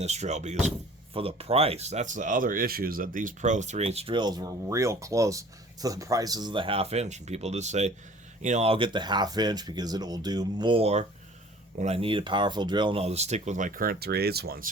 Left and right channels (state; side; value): normal; both; correlation 0.49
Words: drill because for the price. That's the other issue, is that these Pro 3/8 drills were real close to the prices of the 1/2 inch, and people just say, I'll get the 1/2 inch because it will do more when I need a powerful drill, and I'll just stick with my current 3/8 one.